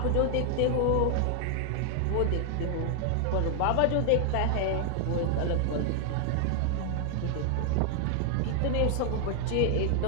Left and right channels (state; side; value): different; both; correlation 0.00